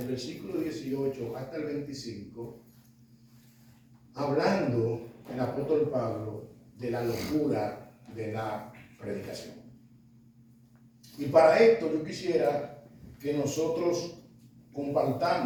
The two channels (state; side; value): identical; both; correlation 1.00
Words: versículo 18 hasta el 25, hablando el apóstol Pablo de la locura de la predicación. Y para esto yo quisiera que nosotros